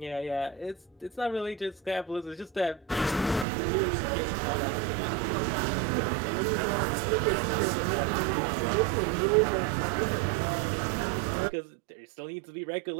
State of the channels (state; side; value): drops out; left; at 3.5 s